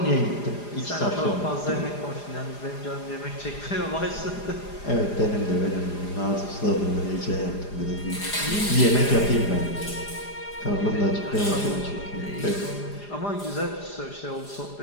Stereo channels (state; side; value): late; right; 4.9 ms